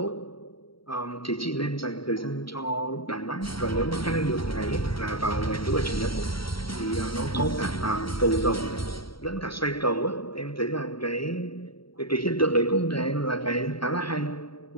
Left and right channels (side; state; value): right; late; 0.74 ms